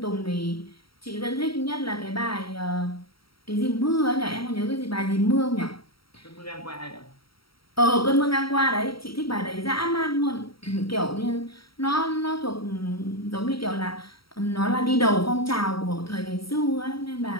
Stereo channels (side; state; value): right; late; 0.75 ms